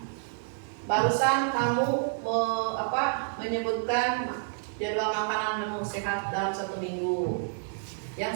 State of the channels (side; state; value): left; silent; digital silence